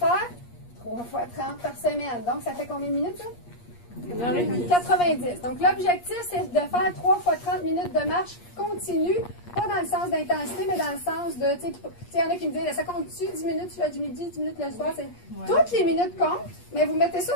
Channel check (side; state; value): right; late; 8.5 ms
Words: 3 fois 30 par semaine. Donc, ça fait combien de minutes, ça? 90. Donc, l'objectif, c'est de faire 3 fois 30 minutes de marche continue, pas dans le sens d'intensité, mais dans le sens de, tu sais, il y en a qui me disent, ça compte-tu 10 minutes le midi, 10 minutes le soir? Toutes les minutes comptent, mais vous mettez ça